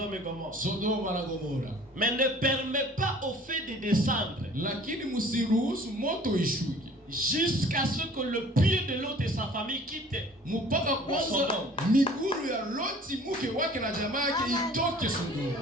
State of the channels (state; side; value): normal; both; correlation 0.50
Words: et Gomorrhe. Sodoma na Gomora. Mais ne permets pas au feu de descendre Lakini msiruhusu moto ishuke jusqu'à ce que le pied de l'autre et sa famille quittent. mpaka kwanza Sodoma. miguru ya Loti mke wake na jamaa yake itoke